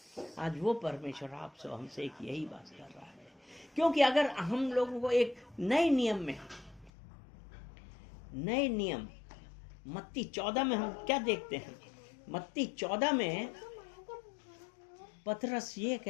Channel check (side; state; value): right; drops out; at 6.9 s